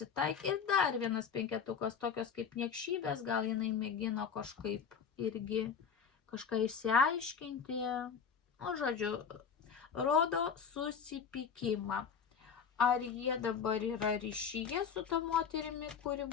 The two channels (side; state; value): right; quieter; 6.7 dB